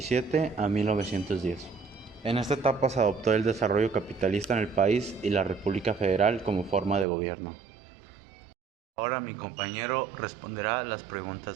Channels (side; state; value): left; drops out; at 7.1 s